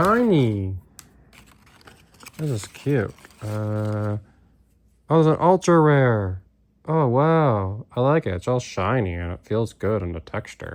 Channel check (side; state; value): both; identical; correlation 1.00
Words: This is cute. Oh, it's an ultra rare. Oh, wow. I like it. It's all shiny and it feels good in the